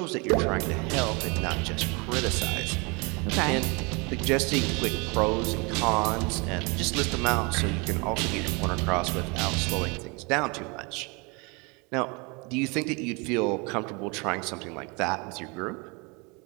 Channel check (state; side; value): quieter; left; 29.5 dB